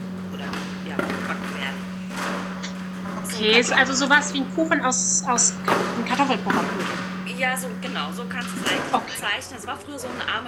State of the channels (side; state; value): both; identical; correlation 1.00